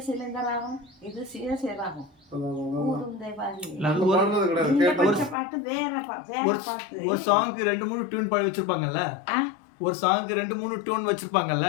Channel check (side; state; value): right; drops out; at 5.4 s